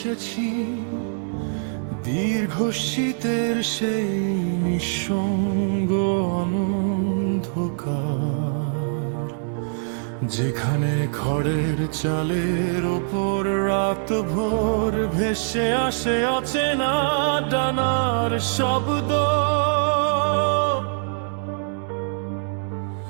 দীর্ঘ শীতের সেই নিঃসঙ্গ অন্ধকার, যেখানে খড়ের চালের ওপর রাত ভোর ভেসে আসে অচেনা ডানার শব্দ।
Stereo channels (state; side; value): silent; left; digital silence